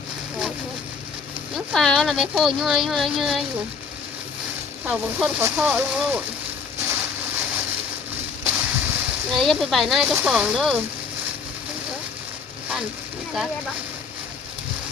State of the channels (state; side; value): quieter; right; 5.4 dB